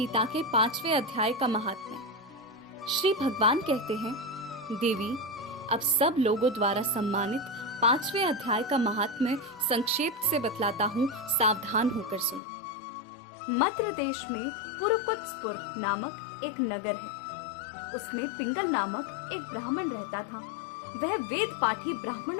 के 5वें अध्याय का महात्म्य। श्री भगवान कहते हैं, देवी, अब सब लोगों द्वारा सम्मानित 5वें अध्याय का महात्म्य संक्षेप से बतलाता हूँ, सावधान होकर सुनो। मद्र देश में पुरुकुत्सपुर नामक एक नगर है। उसमें पिंगल नामक एक ब्राह्मण रहता था। वह वेद पाठी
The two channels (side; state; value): right; drops out; at 12.4 s